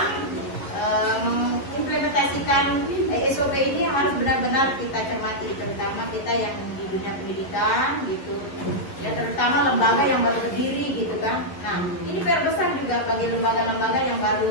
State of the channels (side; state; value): right; late; 11 ms